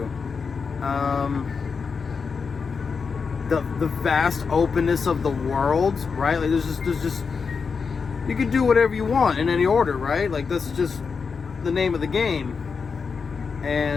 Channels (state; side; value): quieter; right; 5.4 dB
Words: The vast openness of the world, right? Like there's just you can do whatever you want in any order, right? Like that's just the name of the game.